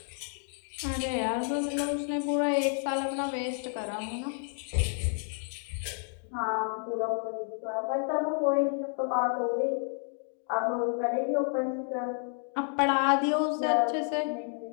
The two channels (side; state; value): right; silent; 58 dB below the other